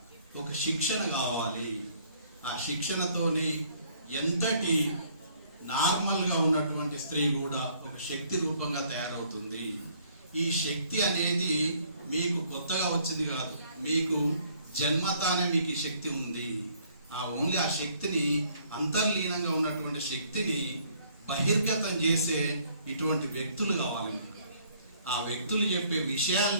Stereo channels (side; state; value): both; inverted; correlation -0.62